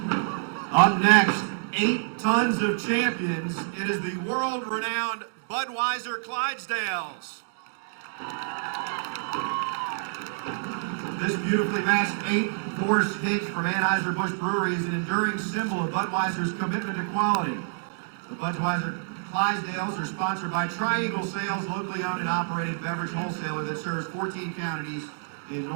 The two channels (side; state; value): left; silent; digital silence